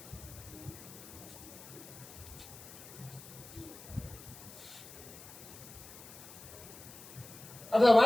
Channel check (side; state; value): left; noise; hiss, 16 dB below the sound